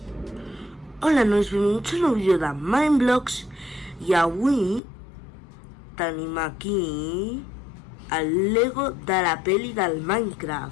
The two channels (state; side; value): drops out; right; at 4.8 s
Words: Hola, nois, benvinguts a un nou vídeo de Mindblocks i avui tenim aquí el Lego de la peli del